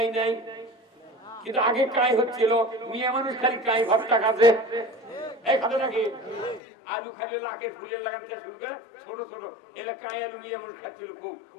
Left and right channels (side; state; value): right; drops out; at 6.6 s